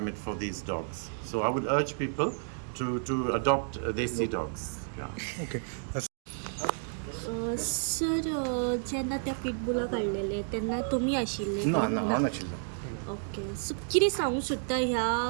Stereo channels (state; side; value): silent; left; 57 dB below the other